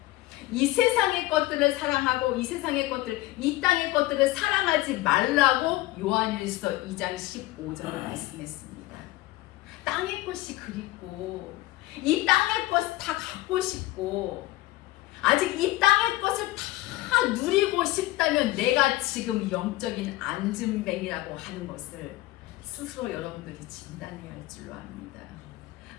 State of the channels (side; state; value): right; quieter; 17.6 dB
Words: 이 세상의 것들을 사랑하고 이 땅의 것들을 사랑하지 말라고 요한일서 2장 15절에 말씀했습니다. 땅의 것이 그립고 이 땅의 것을 다 갖고 싶고 아직 이 땅의 것을 다 누리고 싶다면 내가 지금 영적인 안진뱅이라고 하는 것을 스스로 여러분들이 진단해야 할 줄로 압니다.